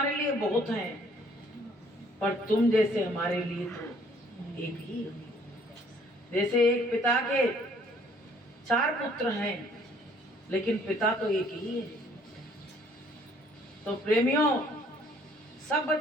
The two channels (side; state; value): both; normal; correlation 0.60